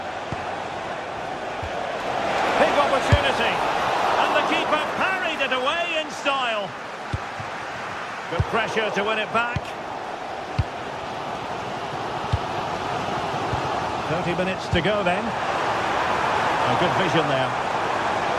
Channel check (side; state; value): both; identical; correlation 1.00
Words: Big opportunity. And the keeper parried it away in style. Good pressure to win it back. 30 minutes to go then. A good vision there.